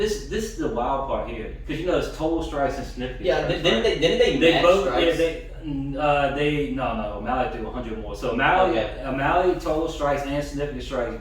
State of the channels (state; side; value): identical; both; correlation 1.00